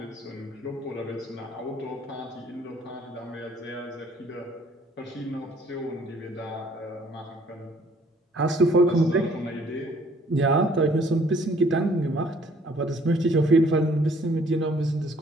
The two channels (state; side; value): normal; both; correlation 0.60